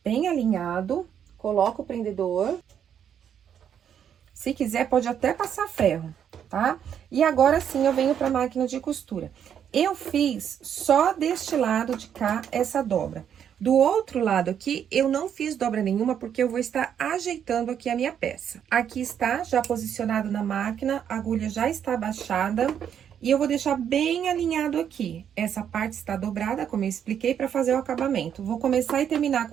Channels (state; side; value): quieter; left; 8.8 dB